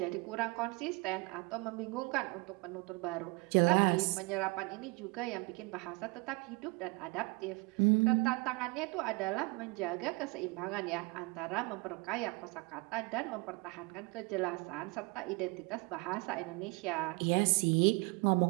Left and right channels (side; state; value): left; quieter; 28.2 dB